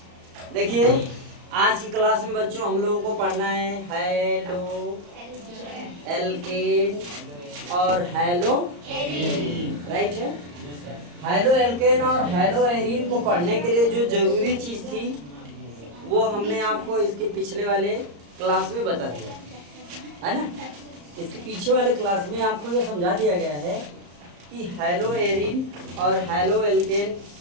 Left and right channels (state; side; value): late; left; 34 ms